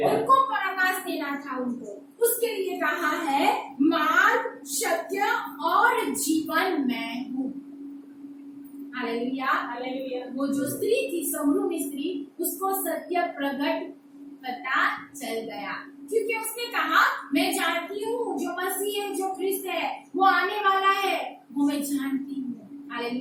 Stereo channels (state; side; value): identical; both; correlation 1.00